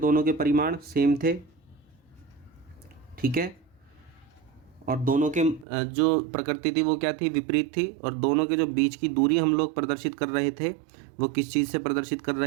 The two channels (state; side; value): drops out; left; at 5.7 s